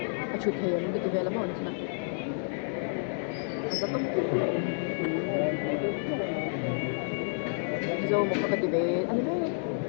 a chu thei an ke vela mo na azatam Mizoram mu ka ti be ani be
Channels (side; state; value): right; silent; digital silence